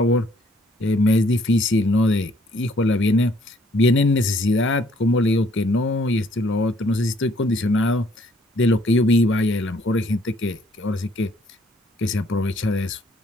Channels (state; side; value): normal; both; correlation 0.63